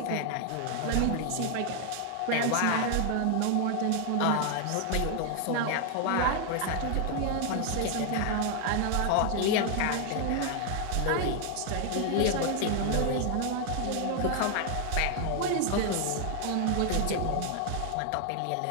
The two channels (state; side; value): different; both; correlation 0.00